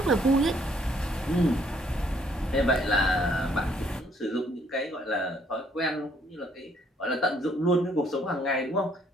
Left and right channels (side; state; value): both; normal; correlation 0.66